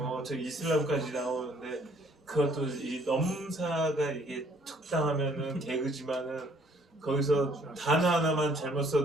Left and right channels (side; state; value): both; normal; correlation 0.62